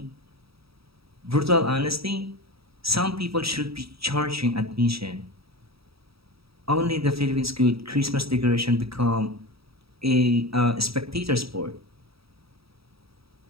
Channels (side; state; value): left; late; 0.77 ms